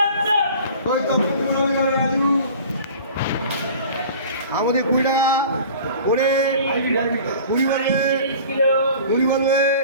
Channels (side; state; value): both; inverted; correlation -0.43